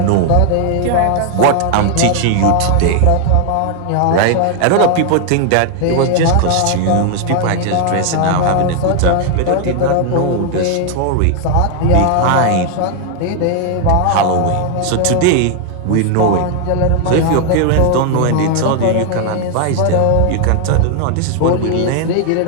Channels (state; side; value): different; both; correlation 0.00